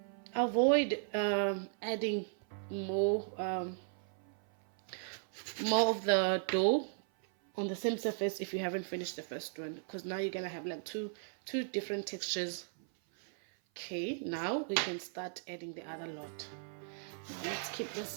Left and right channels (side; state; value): left; silent; 53 dB below the other